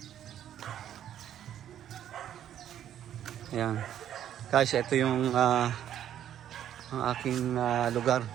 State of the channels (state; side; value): quieter; left; 10.6 dB